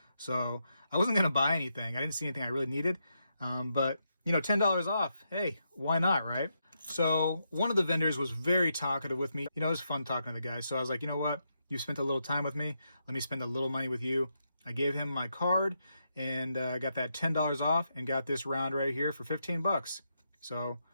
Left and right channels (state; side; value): inverted; both; correlation -0.82